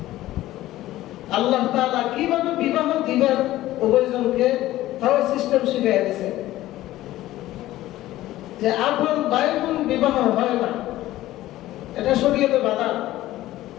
আল্লাহ তাআলা কিভাবে বিবাহ দিবেন উভয়জনকে তাও সিস্টেম শিখিয়ে দিয়েছে, যে আপন ভাই বোন বিবাহ হয় না, এটা শরীয়তে বাধা।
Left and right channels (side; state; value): right; quieter; 15.5 dB